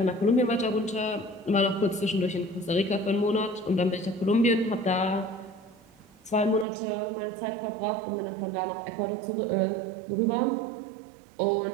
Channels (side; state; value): left; drops out; at 6.7 s